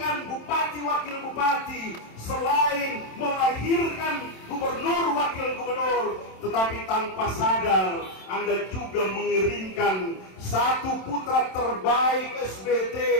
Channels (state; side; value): late; right; 27 ms